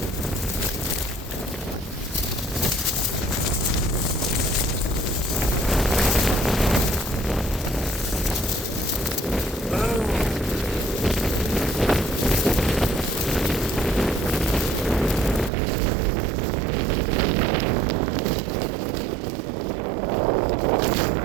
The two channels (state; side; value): drops out; left; at 15.5 s